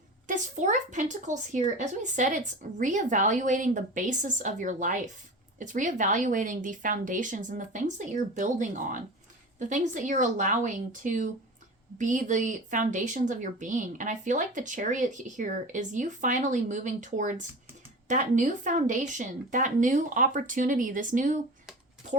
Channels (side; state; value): both; normal; correlation 0.33